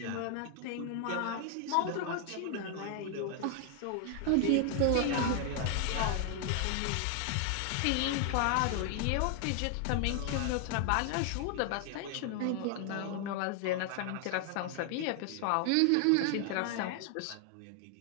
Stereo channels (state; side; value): different; both; correlation 0.00